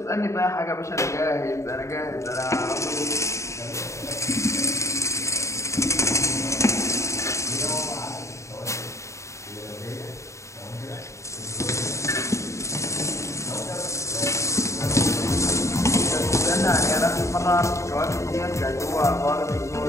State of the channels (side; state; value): right; late; 0.14 ms